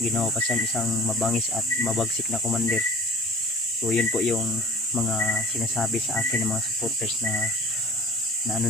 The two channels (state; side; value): normal; both; correlation 0.43